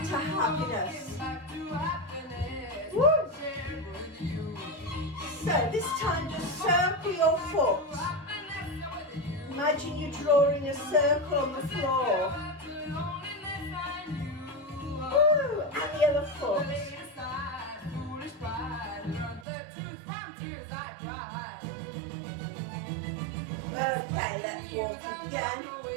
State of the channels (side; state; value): left; drops out; at 19.5 s